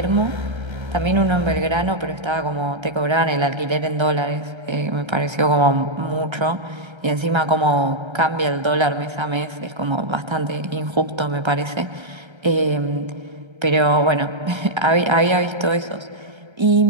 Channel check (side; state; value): left; late; 1.3 ms